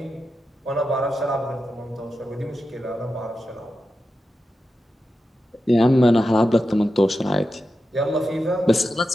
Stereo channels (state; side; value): normal; both; correlation 0.90